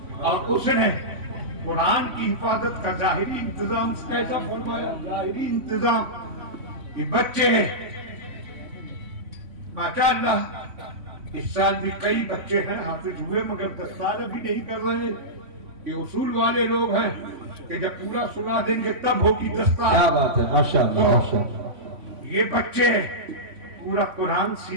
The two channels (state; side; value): late; left; 3.5 ms